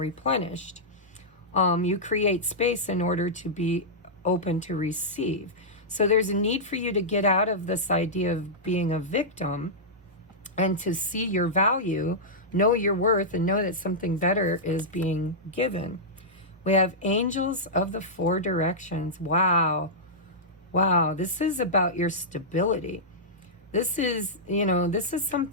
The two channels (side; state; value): both; normal; correlation -0.12